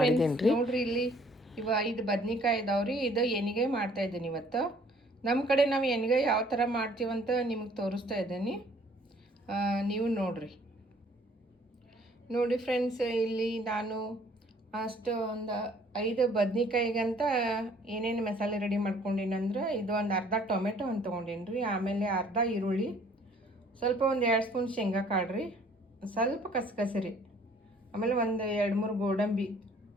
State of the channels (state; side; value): normal; both; correlation 0.58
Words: ರೀ. ನೋಡ್ರಿ, ಇಲ್ಲಿ 5 ಬದ್ನಿಕಾಯಿ ಇದಾವ್ರಿ. ಇದು ಎಣ್ಗಾಯಿ ಮಾಡ್ತಾ ಇದ್ದೀನಿ ಇವತ್ತು. ನಮ್ಮ ಕಡೆ ನಾವು ಎಣ್ಗಾಯಿ ಯಾವ ಥರ ಮಾಡ್ತೀವಂತ ನಿಮಗೆ ತೋರಿಸ್ತಾ ಇದ್ದೀನಿ, ನೀವು ನೋಡಿ ಫ್ರೆಂಡ್ಸ್. ಇಲ್ಲಿ ನಾನು ಅಷ್ಟು ಒಂದು 5 ಬದ್ನಿಕಾಯಿಗಂತ ಏನೇನು ಮಸಾಲೆ ರೆಡಿ ಮಾಡ್ಕೊಂಡಿನಂದ್ರೆ, ಇದು ಒಂದು ಅರ್ಧ ಟೊಮೆಟೊ ಅಂತ ತೊಗೊಂಡೀನಿ ರೀ. ಆಮೇಲೆ ಅರ್ಧ ಈರುಳ್ಳಿ, ಸ್ವಲ್ಪ ಒಂದು 2 ಸ್ಪೂನ್ ಶೇಂಗಾ ಕಾಳು ರೀ, ಸ್ವಲ್ಪ ಕಸಕಸರಿ, ಆಮೇಲೆ ಒಂದು 2-3 ಗೋಡಂಬಿ,